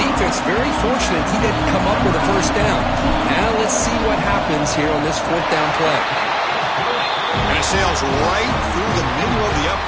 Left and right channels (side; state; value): both; identical; correlation 1.00